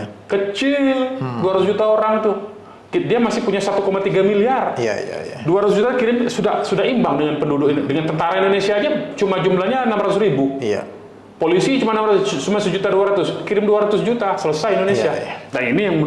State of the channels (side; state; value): both; identical; correlation 1.00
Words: Kecil, 200 juta orang tuh. Dia masih punya 1,3 miliar. 200 juta kirim sudah imbang dengan penduduk, dengan tentara Indonesia aja cuma jumlahnya 600.000. Polisi cuma 1.200.000, kirim 200 juta, selesai Indonesia. Nah ini yang